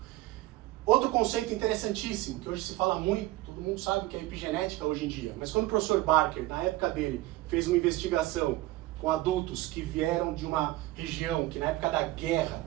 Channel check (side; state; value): left; quieter; 17.6 dB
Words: Outro conceito interessantíssimo, que hoje se fala muito, todo mundo sabe o que é epigenética hoje em dia, mas quando o professor Barker, na época dele, fez uma investigação com adultos que vieram de uma região que na época da guerra